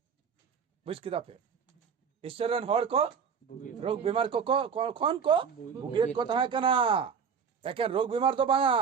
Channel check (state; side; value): quieter; left; 6.6 dB